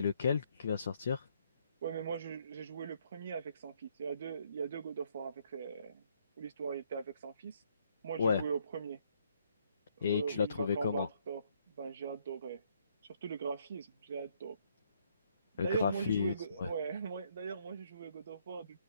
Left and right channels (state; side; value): inverted; both; correlation -0.69